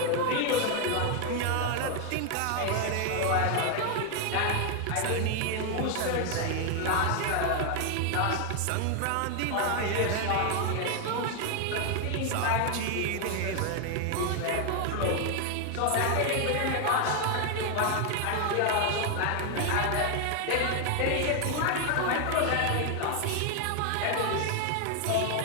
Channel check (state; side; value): different; both; correlation 0.00